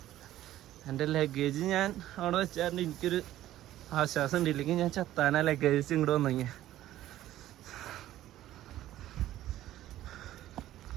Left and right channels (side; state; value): left; quieter; 13.8 dB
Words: എൻ്റെ ലഗേജ് ഞാൻ അവിടെ വെച്ചാൽ എനിക്കൊരു ആശ്വാസം ഉണ്ട്. ഇല്ലെങ്കിൽ ഞാൻ ചത്താനാ ലഗേജ് ഇങ്ങോട്ട് വന്നെങ്കിൽ.